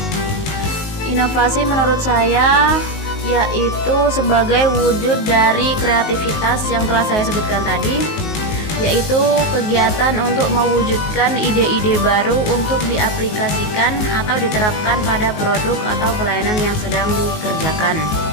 Inovasi menurut saya yaitu sebagai wujud dari kreativitas yang telah saya sebutkan tadi, yaitu kegiatan untuk mewujudkan ide-ide baru untuk diaplikasikan atau diterapkan pada produk atau pelayanan yang sedang dikerjakan.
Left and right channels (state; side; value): late; right; 19 ms